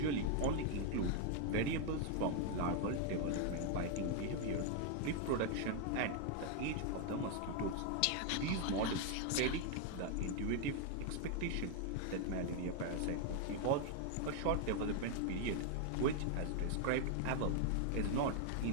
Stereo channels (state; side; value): different; both; correlation 0.00